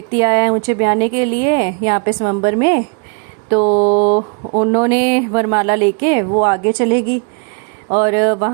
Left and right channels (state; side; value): quieter; left; 35.5 dB